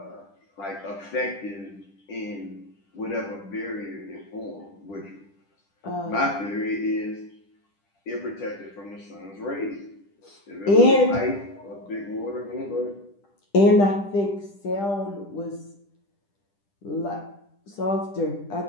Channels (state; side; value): late; right; 10 ms